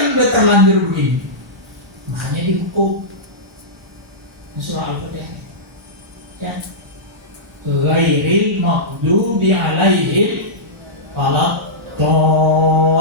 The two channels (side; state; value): both; normal; correlation -0.13